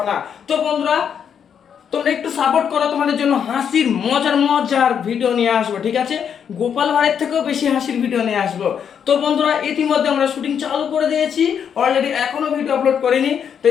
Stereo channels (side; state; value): right; quieter; 7.8 dB